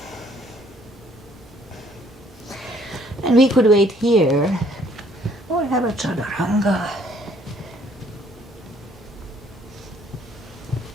And we could wait here or have a chaturanga.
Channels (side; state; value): both; normal; correlation 0.62